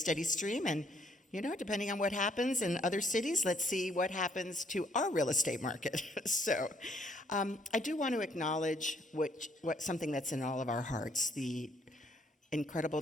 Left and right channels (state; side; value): normal; both; correlation 0.67